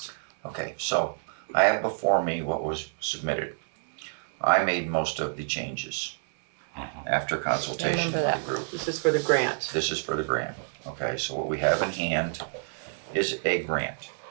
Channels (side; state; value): left; silent; digital silence